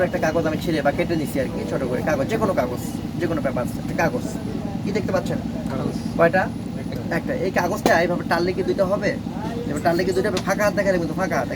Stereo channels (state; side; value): identical; both; correlation 1.00